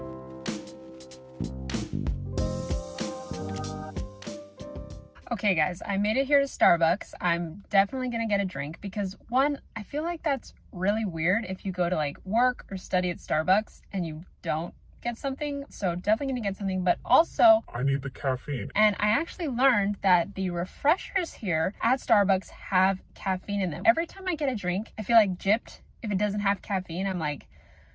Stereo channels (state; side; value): identical; both; correlation 1.00